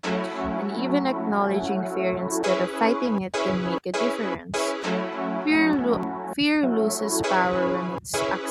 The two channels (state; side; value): identical; both; correlation 1.00